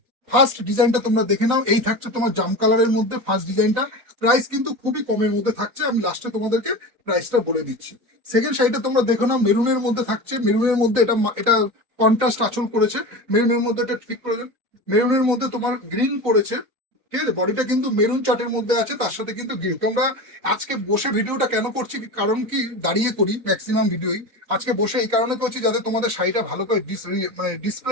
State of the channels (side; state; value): left; late; 3.9 ms